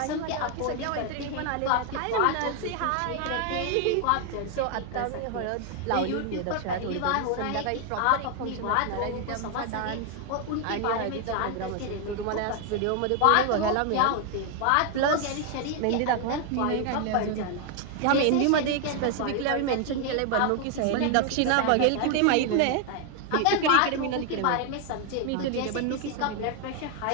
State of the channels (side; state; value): both; different; correlation 0.00